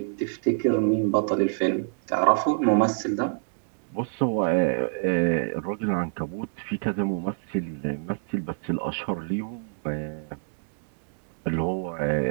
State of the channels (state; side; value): silent; left; digital silence